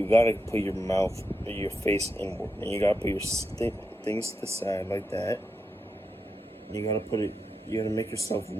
gotta put your mouth, your face inward, and you gotta put your things to the side like that. You gotta make yourself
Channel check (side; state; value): both; normal; correlation 0.86